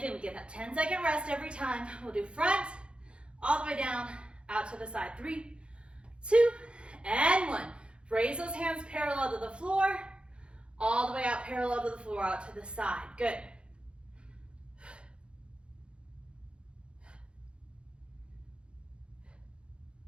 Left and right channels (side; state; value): left; late; 0.057 ms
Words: we get that 10-second rest every time. We'll do front, all the way down, out to the side. 3, 2, and 1. Raise those hands parallel to the floor, all the way out parallel to the floor, out to the side. Good.